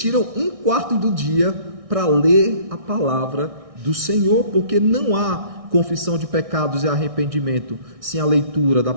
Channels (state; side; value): late; left; 1.6 ms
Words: 1/4 do dia para ler a palavra do Senhor, porque não há confissão de pecados e arrependimento sem a leitura da